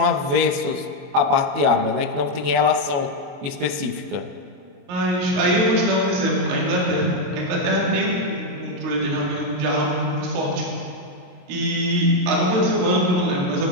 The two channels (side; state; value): left; late; 21 ms